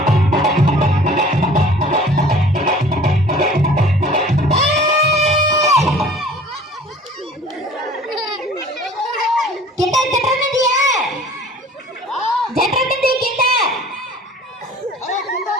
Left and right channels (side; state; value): both; normal; correlation 0.48